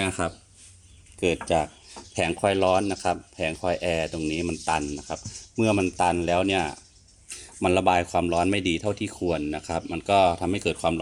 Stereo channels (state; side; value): identical; both; correlation 1.00